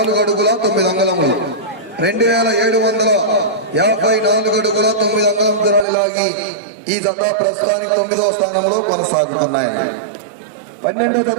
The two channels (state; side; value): drops out; left; at 5.9 s